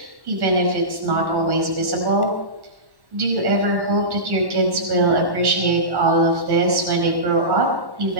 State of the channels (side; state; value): left; late; 1.1 ms